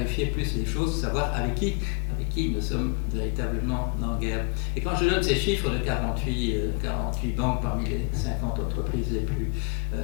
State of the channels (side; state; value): right; quieter; 34.8 dB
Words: plus les choses, savoir avec qui nous sommes véritablement en guerre. Et quand je donne ces chiffres de 48 banques parmi les 50 entreprises